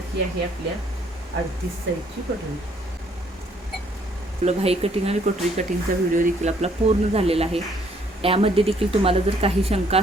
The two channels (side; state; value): both; normal; correlation 0.65